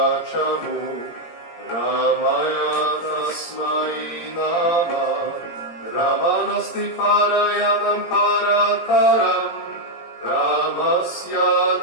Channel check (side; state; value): right; late; 17 ms